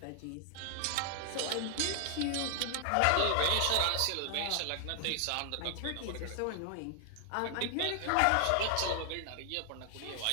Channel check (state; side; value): different; both; correlation 0.00